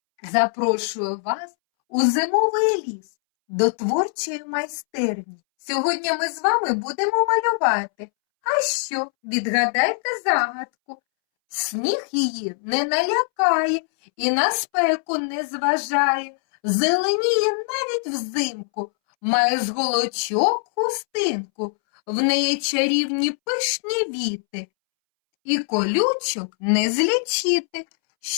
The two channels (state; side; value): silent; right; 64 dB below the other